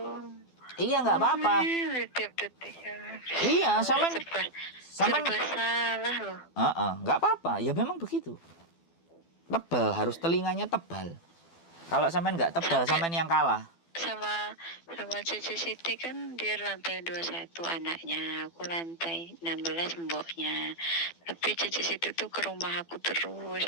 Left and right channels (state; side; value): late; right; 12 ms